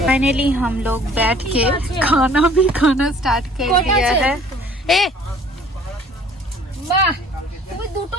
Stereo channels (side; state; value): both; normal; correlation 0.53